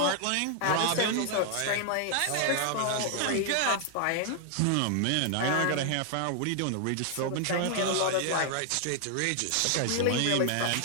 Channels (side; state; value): both; different; correlation 0.00